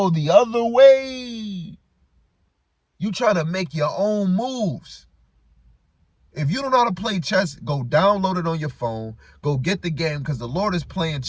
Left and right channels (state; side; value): identical; both; correlation 1.00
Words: the other way, you try to make your own moves. If you don't know how to play chess, go download it on your phone. Go get the game, because the Lord is playing